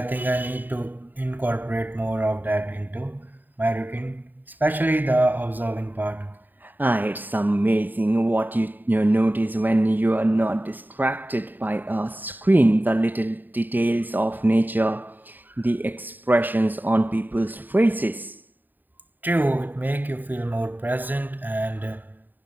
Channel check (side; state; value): left; late; 0.089 ms